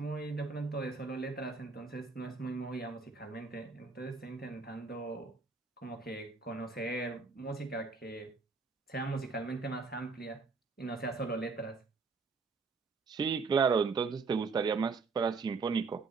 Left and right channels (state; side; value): quieter; left; 4.5 dB